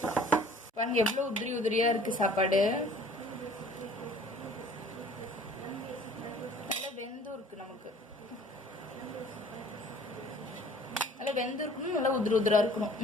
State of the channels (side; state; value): both; normal; correlation 0.51